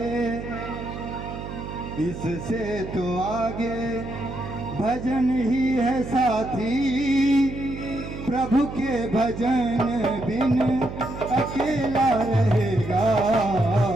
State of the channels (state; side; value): noise; right; hum, 9 dB below the sound